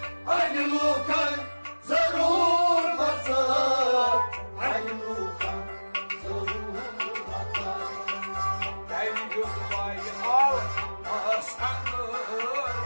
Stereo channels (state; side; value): inverted; both; correlation -1.00